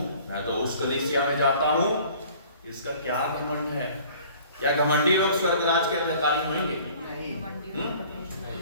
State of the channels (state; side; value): inverted; both; correlation -0.50